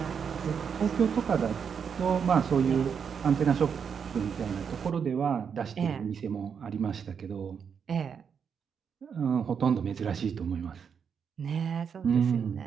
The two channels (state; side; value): quieter; left; 6.9 dB